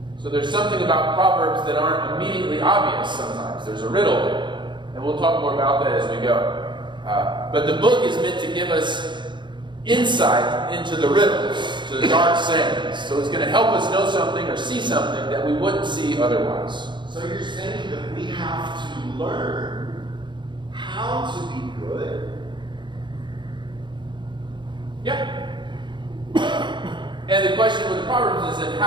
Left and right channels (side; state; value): left; late; 0.23 ms